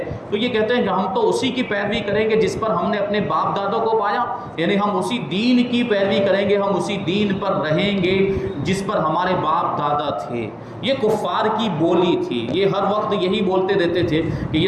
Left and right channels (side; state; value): both; identical; correlation 1.00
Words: تو یہ کہتے ہیں کہ ہم تو اسی کی پیروی کریں گے جس پر ہم نے اپنے باپ دادوں کو پایا، یعنی ہم اسی دین کی پیروی کریں گے، ہم اسی دین پر رہیں گے جس پر ہمارے باپ دادا تھے۔ یہ کفار کی بولی تھی، یہ ہر وقت یہی بولتے رہتے تھے کہ